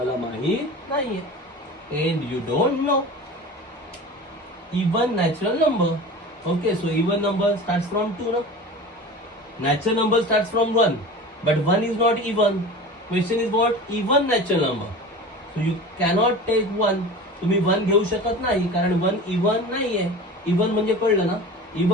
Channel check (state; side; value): normal; both; correlation 0.35